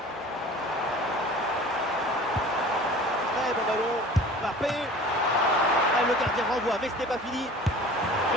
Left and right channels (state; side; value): normal; both; correlation 0.43